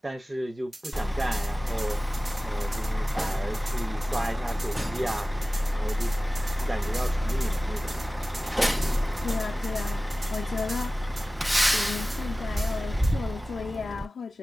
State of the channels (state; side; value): normal; both; correlation 0.97